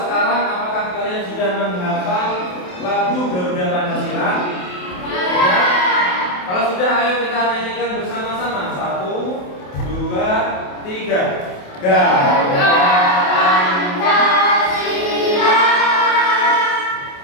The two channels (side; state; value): right; late; 28 ms